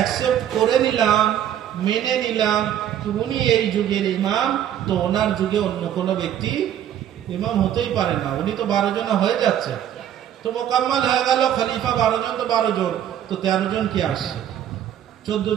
করে নিলাম, মেনে নিলাম উনি এই যুগের ইমাম, তো ওনার যুগে অন্য কোনো ব্যক্তি ইমাম হতেই পারে না। উনি তো 12 জন হয়ে যাচ্ছে, তো মোকাম্মল হয়ে গেল। খলিফা 12 জন, তো 12 জন, তো 13 জন কি আসছে, 14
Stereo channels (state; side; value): quieter; left; 10.6 dB